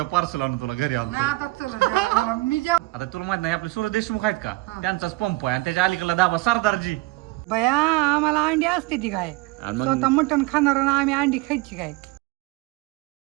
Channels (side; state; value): left; quieter; 22.5 dB